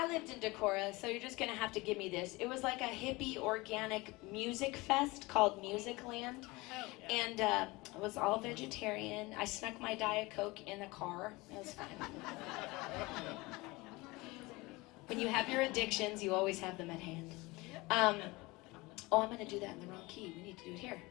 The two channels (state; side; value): quieter; right; 22.9 dB